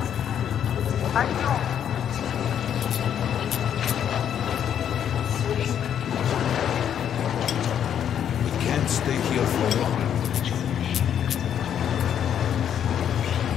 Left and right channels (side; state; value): right; quieter; 9.2 dB